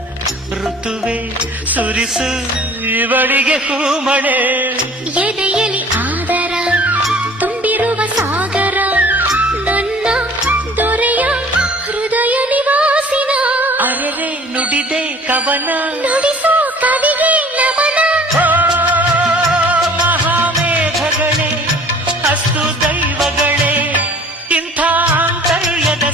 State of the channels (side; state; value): both; normal; correlation 0.50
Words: ಋತುವೆ ಸುರಿಸು ಇವಳಿಗೆ ಹೂಮಳೆ ಎದೆಯಲಿ ಆದರ ತುಂಬಿರುವ ಸಾಗರ ನನ್ನ ದೊರೆಯ ಹೃದಯ ನಿವಾಸಿನ ಅರೆರೆ ನುಡಿದೆ ಕವನ ನುಡಿಸೋ ಕವಿಗೆ ನಮನ ಮಹಾಮೇಘಗಳೇ ಅಸ್ತು ದೈವಗಳೇ ಇಂಥ ಆಂತರ್ಯದ